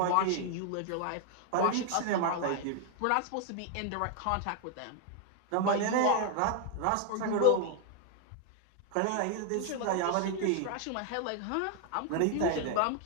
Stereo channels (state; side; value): different; both; correlation 0.00